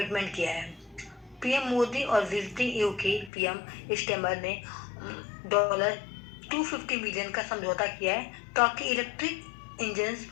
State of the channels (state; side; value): drops out; right; at 3.3 s